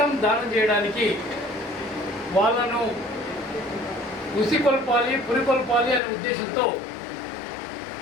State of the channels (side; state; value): right; drops out; at 6.0 s